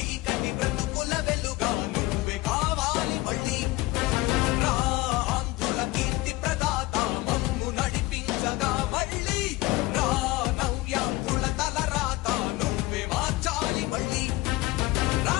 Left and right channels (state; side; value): quieter; right; 19.7 dB